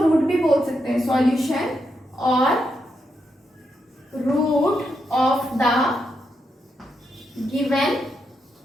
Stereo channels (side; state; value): both; normal; correlation 0.83